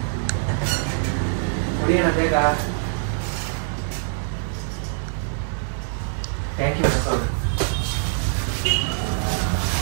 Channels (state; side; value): silent; left; digital silence